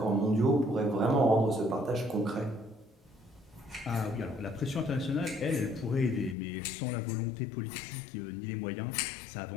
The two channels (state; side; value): drops out; right; at 6.4 s